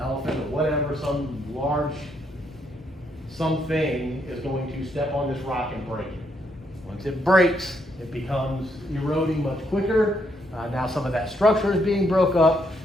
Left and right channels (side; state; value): both; normal; correlation 0.75